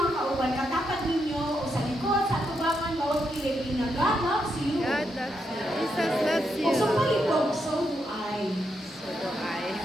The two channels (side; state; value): both; normal; correlation 0.81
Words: kauban, katapat ninyo o sa likod, sa tubangan, bawat kilig na God loves you. God loves you. Jesus loves you. O sa palibog, so do I. So do